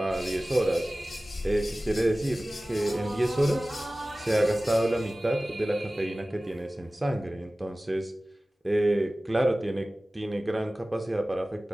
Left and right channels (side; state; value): both; normal; correlation 0.97